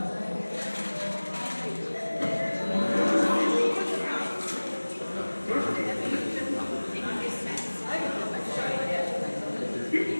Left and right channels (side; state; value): both; inverted; correlation -1.00